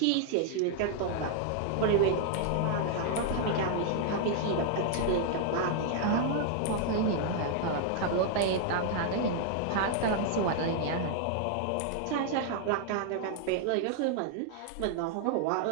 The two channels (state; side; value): different; both; correlation 0.00